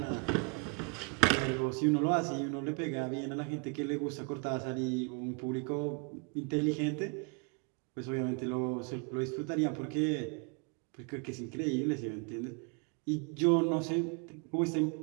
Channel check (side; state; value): left; quieter; 34.5 dB